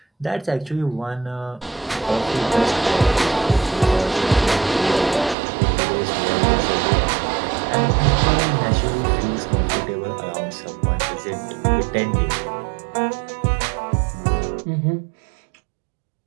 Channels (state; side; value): drops out; left; at 5.4 s